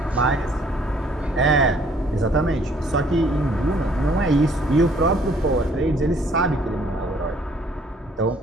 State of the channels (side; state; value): both; normal; correlation 0.61